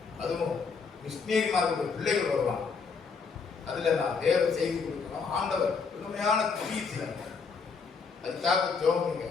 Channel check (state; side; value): quieter; right; 5.2 dB